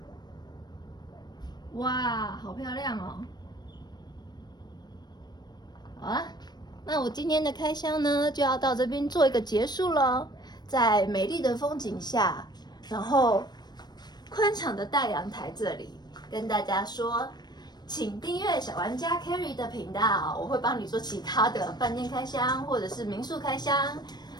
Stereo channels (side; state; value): right; late; 0.20 ms